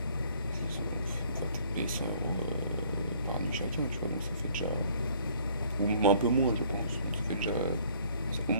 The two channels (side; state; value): both; inverted; correlation -0.58